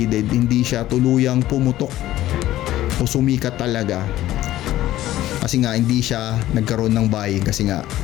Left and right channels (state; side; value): quieter; right; 14.5 dB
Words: hindi siya tuluyang pumutok o sumikat talaga. Kasi nga hindi siya nagkaroon ng buying kasi nga